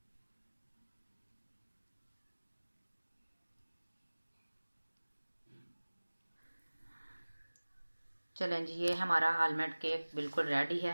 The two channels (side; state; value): both; inverted; correlation -1.00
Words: चलें जी, ये हमारा आलमंड केक बिल्कुल रेडी